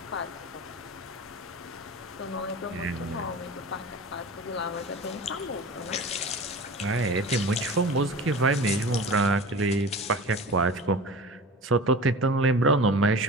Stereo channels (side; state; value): both; normal; correlation 0.36